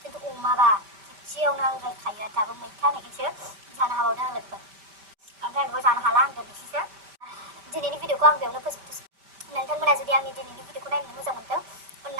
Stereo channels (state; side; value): late; left; 5.1 ms